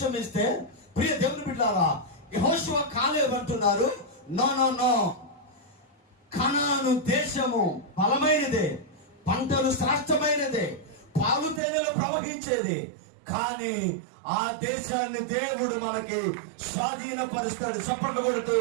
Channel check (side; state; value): left; drops out; at 11.6 s